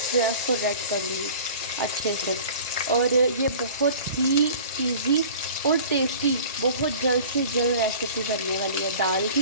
जो है उसको रेड करूँगी अच्छे से। और ये बहुत ही इजी और टेस्टी, बहुत जल्द से जल्द रेसिपी बनने वाली है। दाल की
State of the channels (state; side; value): inverted; both; correlation -0.43